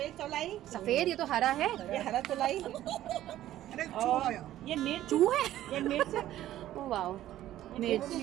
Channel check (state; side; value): quieter; left; 13.4 dB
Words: चौलाई, सफेद, ये तो हरा है। ये हरा चौलाई, और ये मिर्च। चू है। ये मिर्च। ओ वाओ, मिर्च।